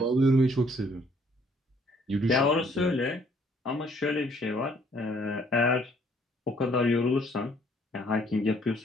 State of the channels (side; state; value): both; normal; correlation 0.63